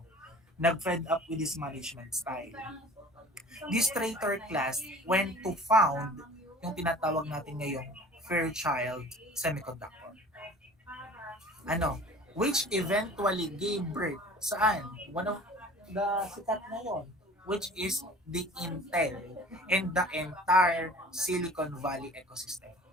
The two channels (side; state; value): both; normal; correlation 0.45